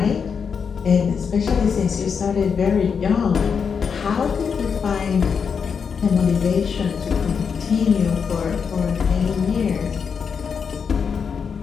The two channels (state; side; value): quieter; right; 6.3 dB